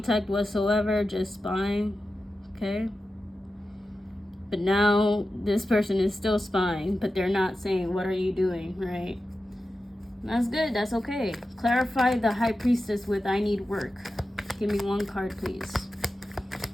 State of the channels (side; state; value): both; normal; correlation 0.92